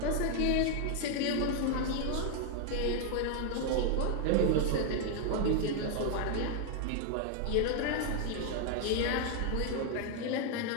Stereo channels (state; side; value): different; both; correlation 0.00